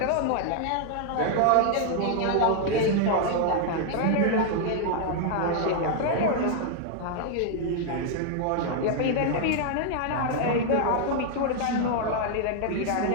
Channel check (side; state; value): both; different; correlation 0.00